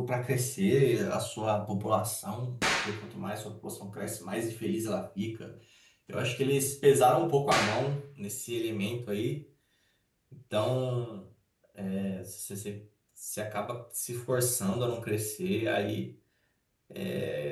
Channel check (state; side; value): identical; both; correlation 1.00